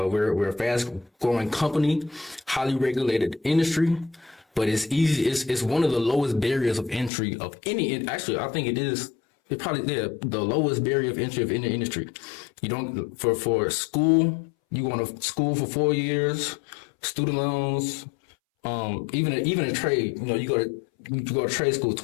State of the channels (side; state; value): right; drops out; at 7.1 s